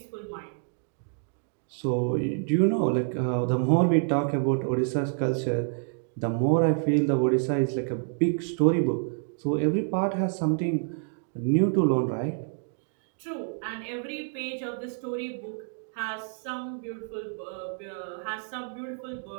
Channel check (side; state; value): left; silent; 59 dB below the other